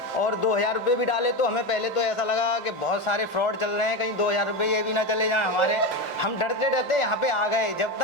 और 2000 रुपये भी डाले तो हमें पहले तो ऐसा लगा कि बहुत सारे फ्रॉड चल रहे हैं, कहीं 2000 रुपये ये भी ना चले जाएं हमारे। हम डरते डरते यहाँ पे आ गए। जब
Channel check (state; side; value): normal; both; correlation 0.17